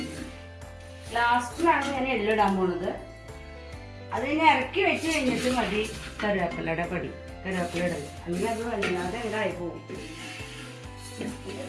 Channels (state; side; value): identical; both; correlation 1.00